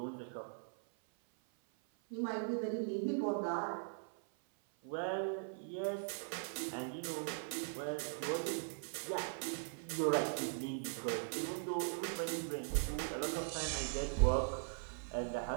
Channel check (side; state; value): left; silent; 51 dB below the other